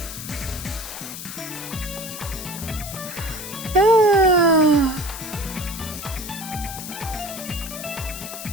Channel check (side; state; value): left; noise; hiss, 9 dB below the sound